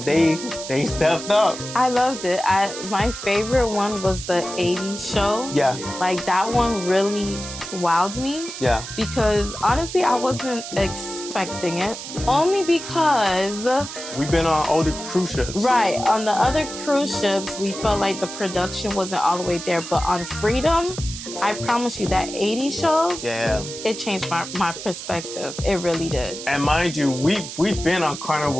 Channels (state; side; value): noise; right; hiss, 10 dB below the sound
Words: they stepped up. I loved it. My favorite one was the 80s show. Yeah. Like that one really wowed me. Yeah. Because honestly, I wasn't expecting it. Only because we've been on older cruise ships. Right. On the other cruise ships, we felt like the production wasn't all the way there. But on Freedom, I promise you that 80s shows, it changed my perspective. It really did. And mind you, we've been on